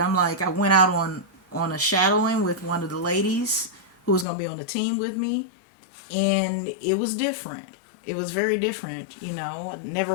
like, I went out on a shadowing with one of the ladies who was going to be on the team with me. And it was different. It was very different. You know, I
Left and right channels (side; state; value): right; drops out; at 4.2 s